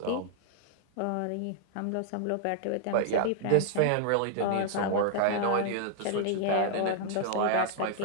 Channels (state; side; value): different; both; correlation -0.01